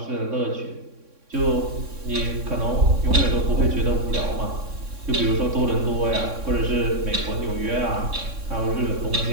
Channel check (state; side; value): late; left; 3.6 ms